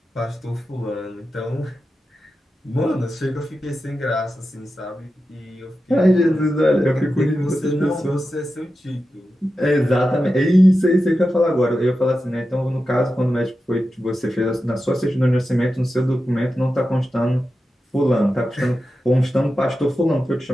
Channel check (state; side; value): normal; both; correlation 0.91